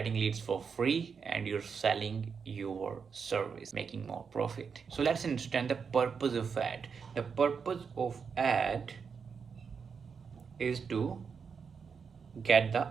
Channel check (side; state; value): left; quieter; 6.0 dB